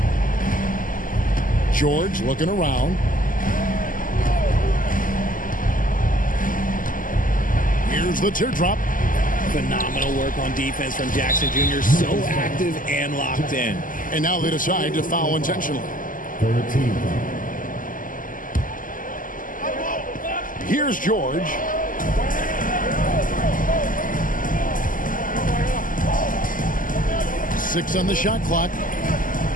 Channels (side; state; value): right; late; 0.39 ms